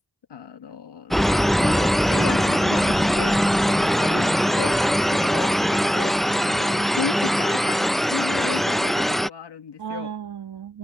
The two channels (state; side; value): normal; both; correlation 0.93